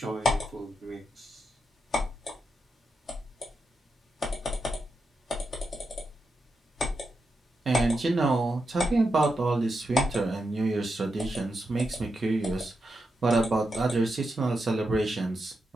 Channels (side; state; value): both; normal; correlation 0.86